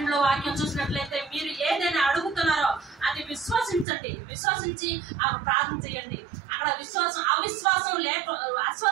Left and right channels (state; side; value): drops out; left; at 3.9 s